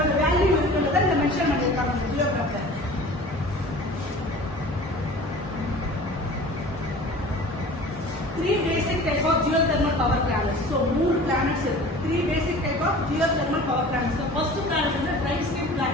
வேல்யூ இருக்குன்றதை இந்த மென்ஷன் பண்ணியிருக்காங்க இந்த ஜியோகிராஃபில். Three basic type of geothermal power plants. So, more planets. Three basic type of geothermal power plants. The first planet is the dry steam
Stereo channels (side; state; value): both; normal; correlation 0.41